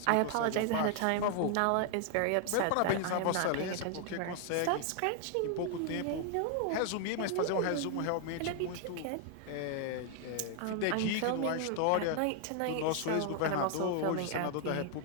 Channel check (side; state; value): both; different; correlation 0.00